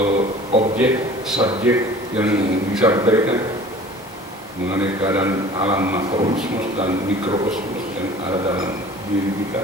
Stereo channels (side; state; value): both; normal; correlation 0.45